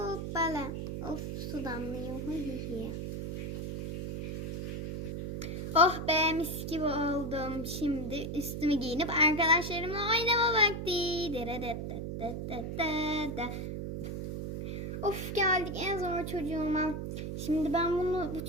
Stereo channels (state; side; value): noise; right; hum, 5 dB below the sound